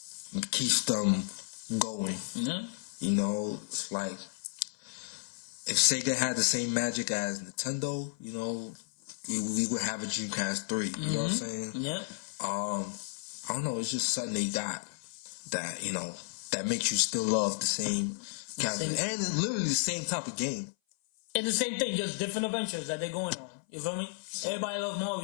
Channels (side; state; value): right; silent; 56 dB below the other